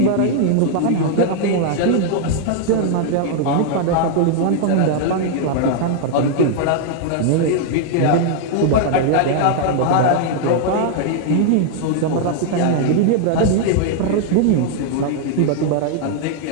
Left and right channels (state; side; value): different; both; correlation 0.00